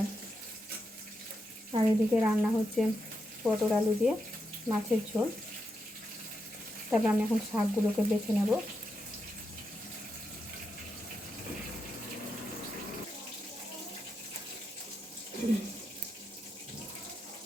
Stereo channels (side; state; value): both; normal; correlation 0.85